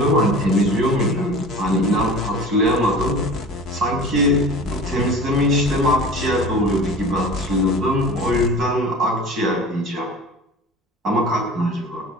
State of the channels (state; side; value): normal; both; correlation 0.38